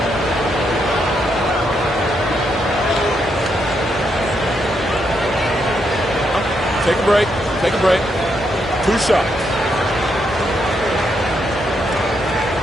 Take a break. Take a break. 2 shots.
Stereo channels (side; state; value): both; normal; correlation 0.79